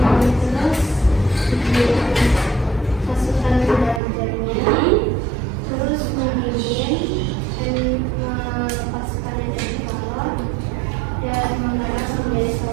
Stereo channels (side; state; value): left; drops out; at 4.0 s